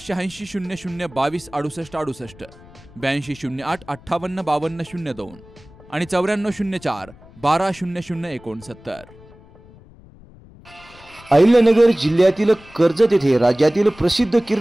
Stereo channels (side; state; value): left; noise; rumble, 23 dB below the sound